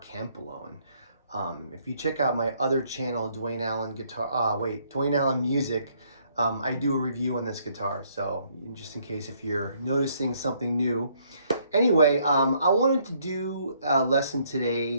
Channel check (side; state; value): both; inverted; correlation -0.67